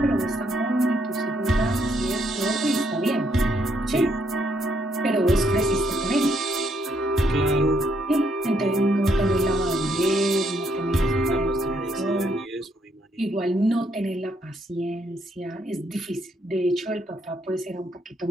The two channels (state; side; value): normal; both; correlation 0.73